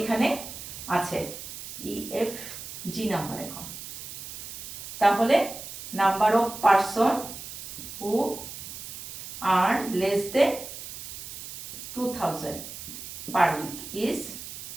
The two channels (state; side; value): noise; right; hiss, 10 dB below the sound